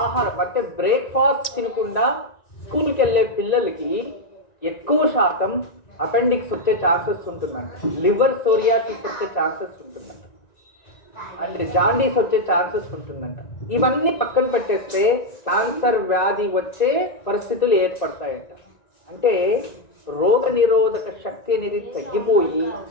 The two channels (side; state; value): right; late; 1.9 ms